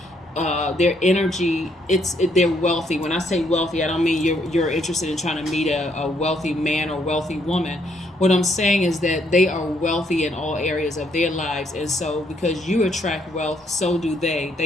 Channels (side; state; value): both; normal; correlation 0.71